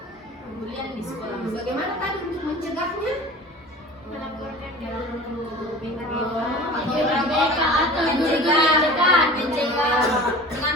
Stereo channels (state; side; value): normal; both; correlation 0.40